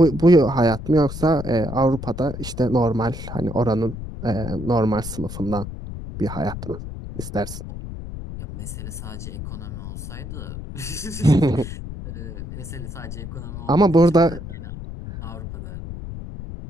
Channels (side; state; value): left; noise; rumble, 9 dB below the sound